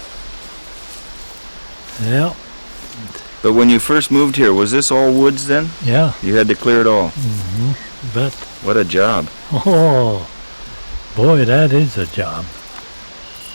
Yeah, But when you first moved here, was this all woods then? yeah, You had to clear it all. but, What a job. oh, boy, that is a job.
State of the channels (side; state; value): both; inverted; correlation -1.00